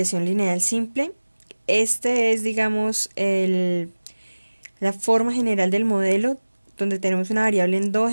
lineal simple. Este es, digamos, la forma general del modelo, donde tenemos una variable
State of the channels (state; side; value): inverted; both; correlation -1.00